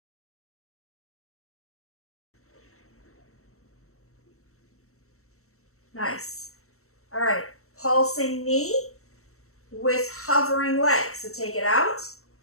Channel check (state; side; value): late; right; 0.63 ms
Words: Nice. All right, pulsing knee with hovering leg. So take it out